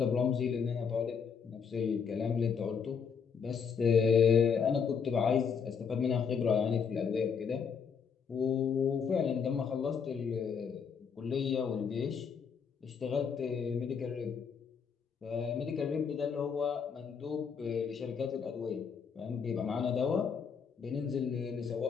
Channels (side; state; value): right; quieter; 6.5 dB